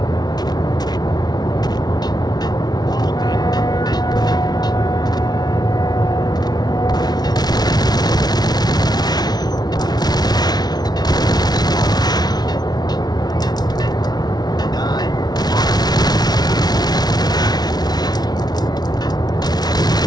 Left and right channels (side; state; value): right; late; 0.19 ms